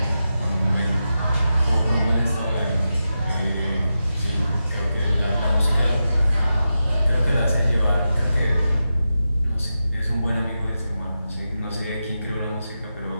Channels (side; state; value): both; inverted; correlation -0.90